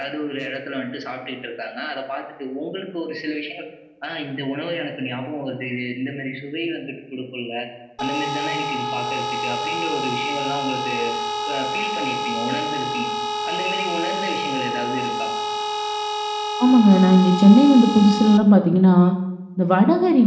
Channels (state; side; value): identical; both; correlation 1.00